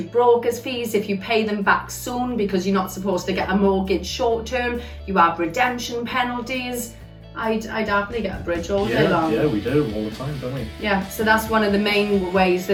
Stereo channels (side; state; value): both; identical; correlation 1.00